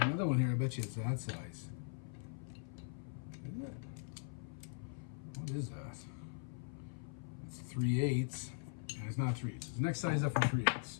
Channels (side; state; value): right; silent; 51 dB below the other